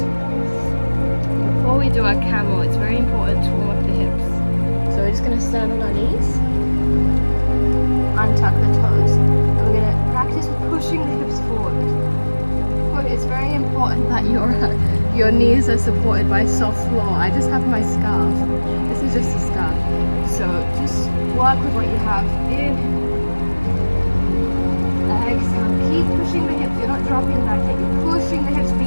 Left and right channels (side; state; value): both; inverted; correlation -1.00